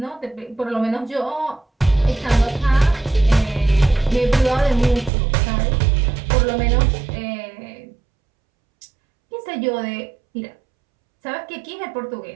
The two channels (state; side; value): drops out; left; at 5.1 s